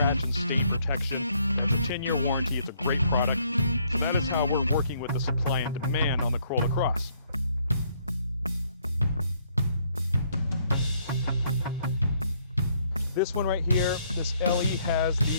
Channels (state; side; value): inverted; both; correlation -0.68